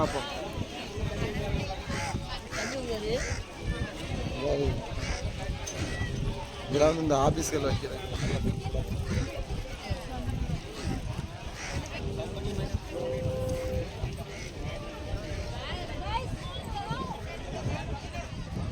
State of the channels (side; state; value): both; identical; correlation 1.00